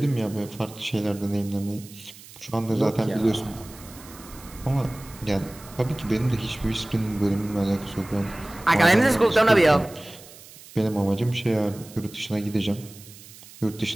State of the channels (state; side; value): noise; right; hiss, 19 dB below the sound